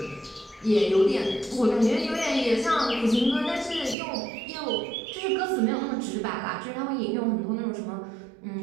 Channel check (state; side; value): drops out; left; at 4.0 s